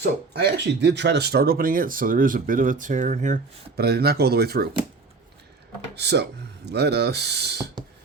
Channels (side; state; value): left; quieter; 4.2 dB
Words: I actually did try to start opening it, so there is a bit of a tear in here, but I did not go all the way through. So let us